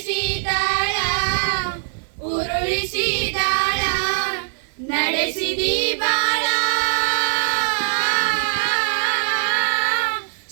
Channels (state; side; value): silent; left; digital silence